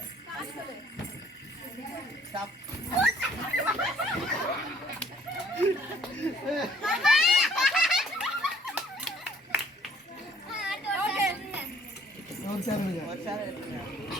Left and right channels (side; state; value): both; normal; correlation 0.59